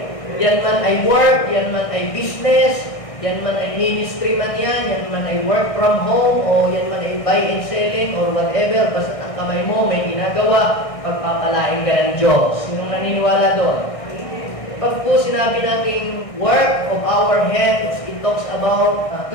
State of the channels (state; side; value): late; right; 1.6 ms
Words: Yan man ay work, yan man ay business, yan man ay ministry man yan man ay work from home, o yan man ay buy and selling, or whatever, basta ang kamay mo may ginagawa, pagpapalain ka ng Diyos. Sinong naniniwala doon? Pag po sinabi nating work of our hands, it talks about